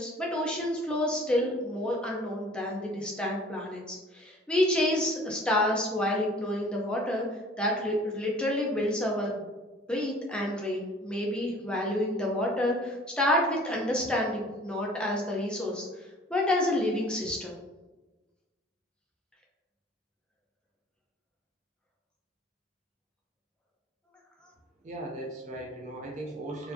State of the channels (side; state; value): both; normal; correlation 0.50